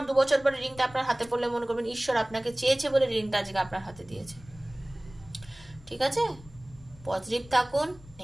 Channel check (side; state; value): left; noise; rumble, 22 dB below the sound